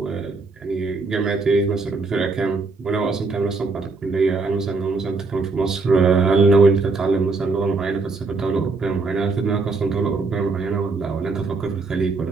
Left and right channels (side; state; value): left; quieter; 4.0 dB